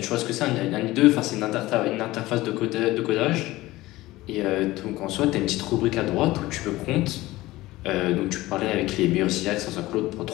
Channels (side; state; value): right; quieter; 18.1 dB